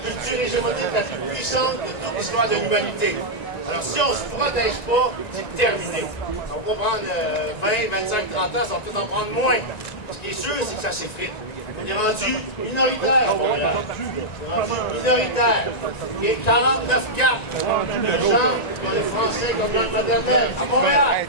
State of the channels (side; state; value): right; late; 1.9 ms